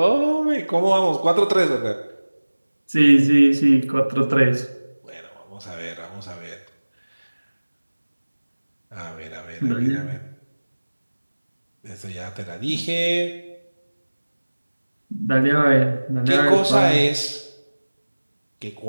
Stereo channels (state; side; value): inverted; both; correlation -1.00